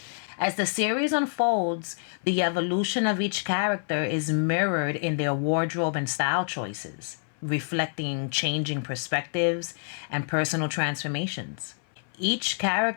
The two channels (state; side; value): silent; right; 58 dB below the other